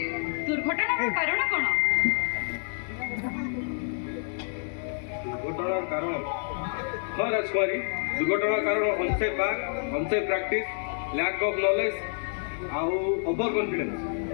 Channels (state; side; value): silent; right; digital silence